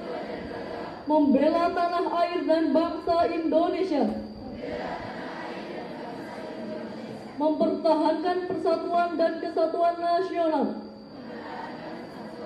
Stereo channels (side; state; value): both; identical; correlation 1.00